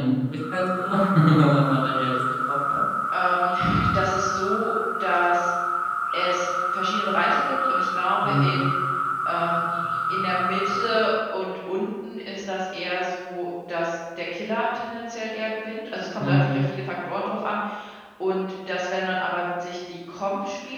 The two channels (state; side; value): identical; both; correlation 1.00